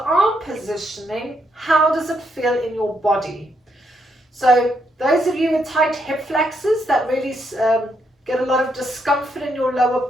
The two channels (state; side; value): normal; both; correlation 0.77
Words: positioning, how does it feel in your body? So those of you with tight hip flexors that really get a lot of discomfort in your lower